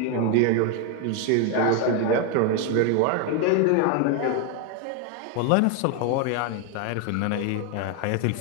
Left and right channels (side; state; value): both; different; correlation 0.01